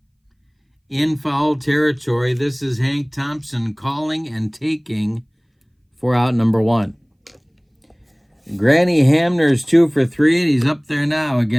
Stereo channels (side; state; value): both; identical; correlation 1.00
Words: in foul territory. This is Hank Thompson calling and taking for out number 1. Granny Hamner's 2 for 3, and he's up there now